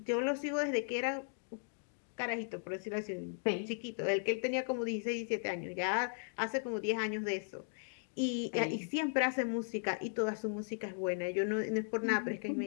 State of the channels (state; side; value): silent; right; digital silence